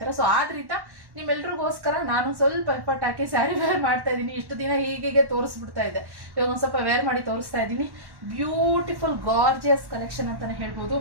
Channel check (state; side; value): late; left; 1.1 ms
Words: ಸೊ ಆದ್ರಿಂದ ನಿಮ್ಮೆಲ್ರಿಗೋಸ್ಕರ ನಾನು ಸ್ವಲ್ಪ ಎಫರ್ಟ್ ಹಾಕಿ ಸ್ಯಾರಿ ವೇರ್ ಮಾಡ್ತಾ ಇದ್ದೀನಿ. ಇಷ್ಟು ದಿನ ಹೀಗೆ ತೋರಿಸ್ಬಿಡ್ತಾ ಇದೆ, ಇವಾಗ ಒಂದು ಸ್ವಲ್ಪ ವೇರ್ ಮಾಡಿ ತೋರಿಸ್ತಾ ಇದ್ದೀನಿ. ಬ್ಯೂಟಿಫುಲ್ ಗಾರ್ಜಿಯಸ್ ಕಲೆಕ್ಷನ್ ಅಂತಾನೆ ಹೇಳ್ಬೋದು.